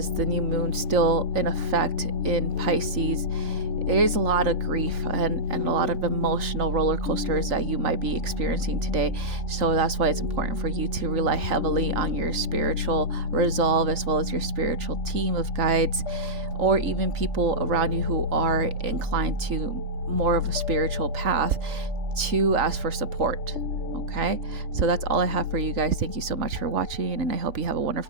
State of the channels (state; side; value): late; left; 3.5 ms